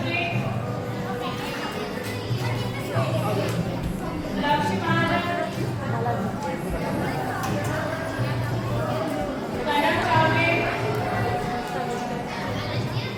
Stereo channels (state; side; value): identical; both; correlation 1.00